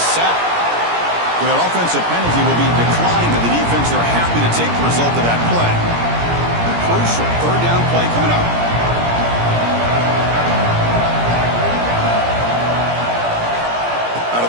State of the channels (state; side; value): late; left; 17 ms